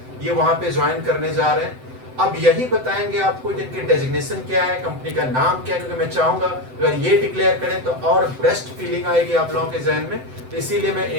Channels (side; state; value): left; late; 7.8 ms